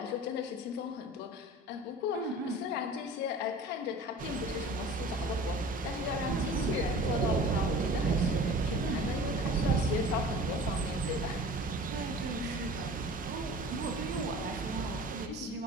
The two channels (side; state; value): both; normal; correlation 0.41